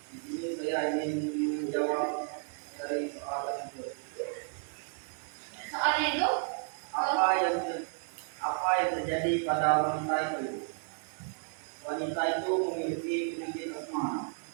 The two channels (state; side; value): silent; left; 56 dB below the other